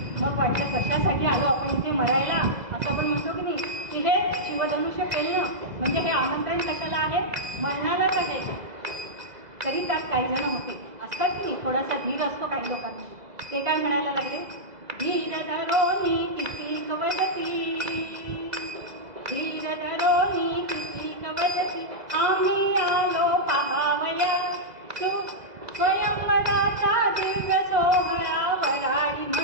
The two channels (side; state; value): left; late; 2.0 ms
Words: मग वाटलं कशासाठी आलो आपण इथे मरायला, असं आपण म्हणतो की नाही की हे शिवधनुष्य पेलणं म्हणजे हे आमंत्रण कशाला आहे, मरणालाच आहे. तरी त्यात काही जण होते असतात की नाही, थोडासा धीर असतो काही लोकांना. ते काय म्हणायला लागले, धीर धरोनी किती कवदती, धीर धरोनी किती कवदती, आम्ही आलो पाहावया स्वयंवराचा दिव्य सोहळा, वराडी